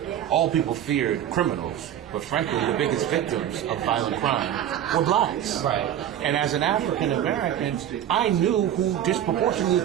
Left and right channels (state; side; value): quieter; left; 10.8 dB